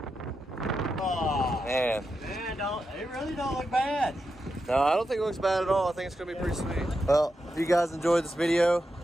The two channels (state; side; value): normal; both; correlation 0.87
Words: Oh, Man, it really don't look bad. no, I don't think it looks bad at all. I think it's gonna be pretty sweet. Well, if you guys enjoyed this video,